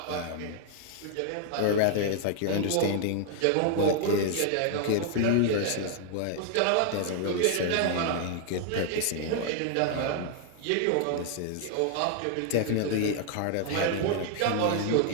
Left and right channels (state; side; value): different; both; correlation 0.00